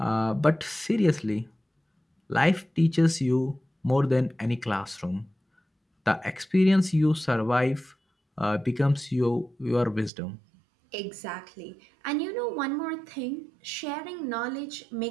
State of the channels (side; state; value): left; drops out; at 10.1 s